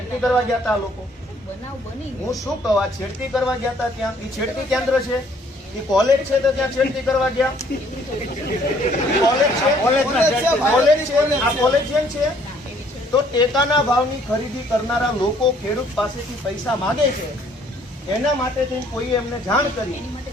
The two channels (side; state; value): both; normal; correlation 0.62